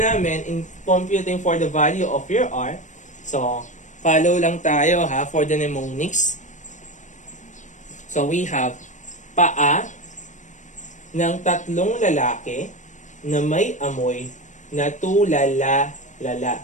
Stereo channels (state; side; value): late; right; 0.35 ms